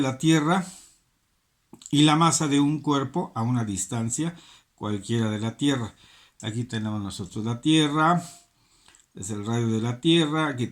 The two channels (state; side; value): identical; both; correlation 1.00